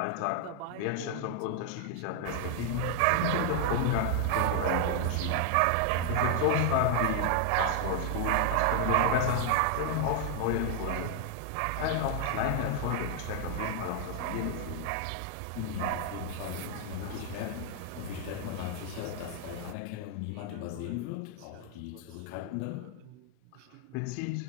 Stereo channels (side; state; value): both; different; correlation 0.00